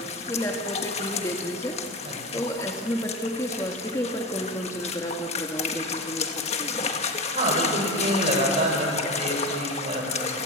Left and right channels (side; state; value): both; normal; correlation 0.23